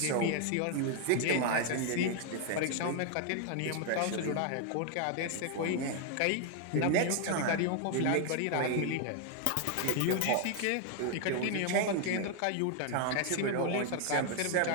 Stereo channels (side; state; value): both; different; correlation 0.00